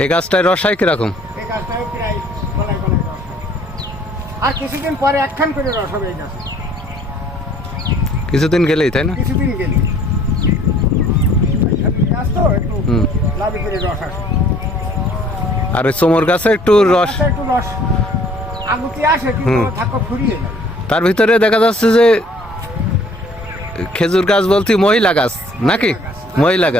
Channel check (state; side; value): normal; both; correlation 0.57